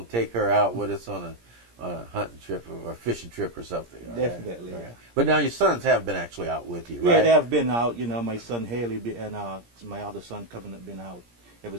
to take her out with us on a hunting trip or a fishing trip or something. Definitely, right? yeah. But now your sons have been actually out with you, right? Yeah, they have been out. You know, my son Haley and my other son Kevin have been out ever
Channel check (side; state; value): left; late; 17 ms